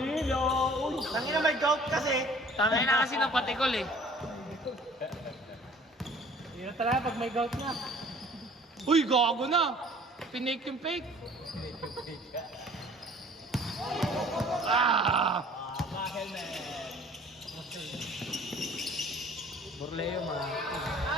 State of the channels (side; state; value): both; normal; correlation 0.51